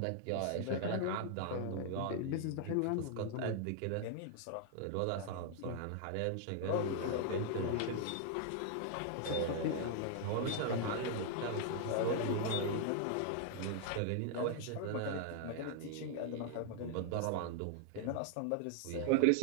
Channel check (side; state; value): both; different; correlation 0.00